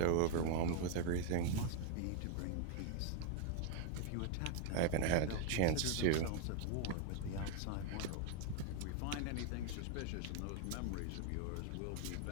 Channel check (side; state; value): both; different; correlation 0.00